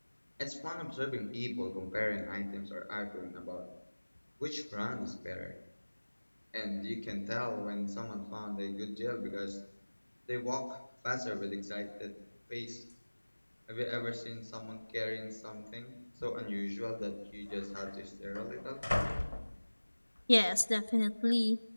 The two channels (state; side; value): inverted; both; correlation -1.00